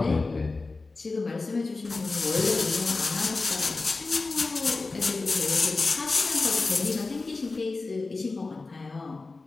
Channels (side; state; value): right; quieter; 3.7 dB